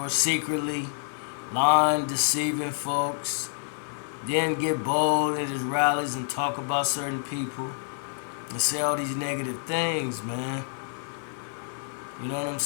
secretly, lying, deceiving folks, then get bold at his rallies and talk about certain people and say all these negative things, man. You know what I'm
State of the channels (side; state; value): right; silent; digital silence